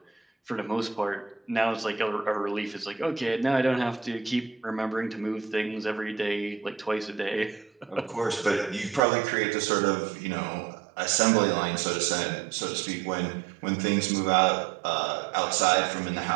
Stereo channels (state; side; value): drops out; left; at 9.0 s